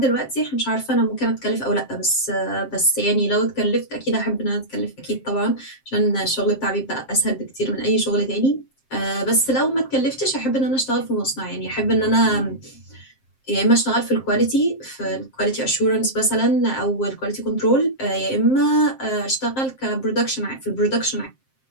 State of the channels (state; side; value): late; right; 7.6 ms